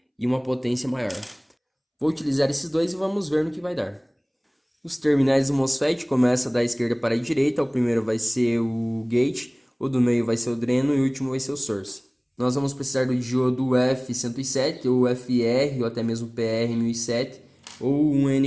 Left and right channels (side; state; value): both; identical; correlation 1.00